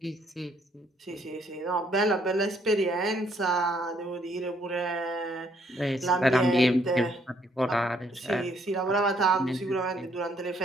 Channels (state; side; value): normal; both; correlation 0.68